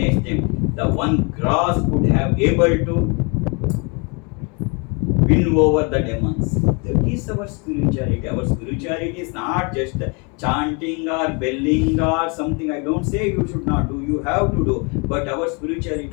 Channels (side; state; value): right; quieter; 32.3 dB